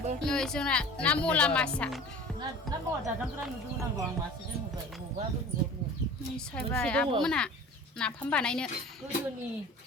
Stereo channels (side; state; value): both; normal; correlation 0.41